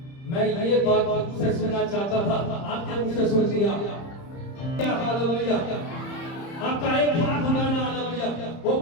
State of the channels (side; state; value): right; late; 30 ms